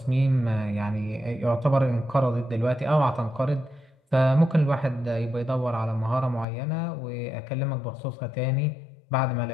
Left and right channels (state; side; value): drops out; right; at 6.5 s